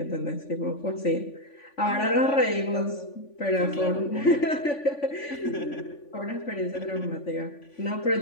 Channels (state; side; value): late; right; 3.5 ms